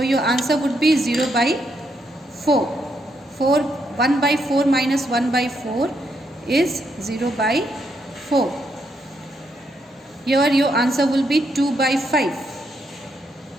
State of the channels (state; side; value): normal; both; correlation 0.78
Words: answer would be 0 by 4. 1 by 4 minus 1 by 4 is 0 by 4. Here your answer will be 2 by 5.